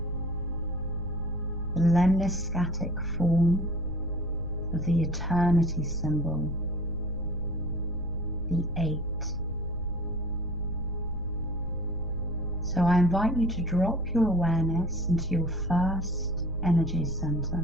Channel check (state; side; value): noise; right; rumble, 10 dB below the sound